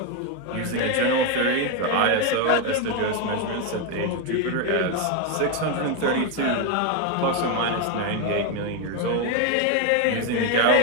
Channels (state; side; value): different; both; correlation 0.02